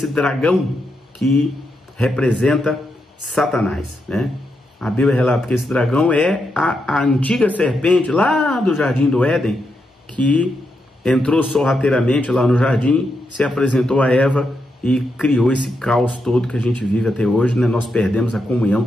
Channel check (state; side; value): normal; both; correlation 0.83